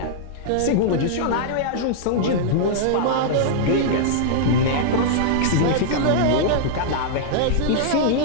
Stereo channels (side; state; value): both; different; correlation -0.02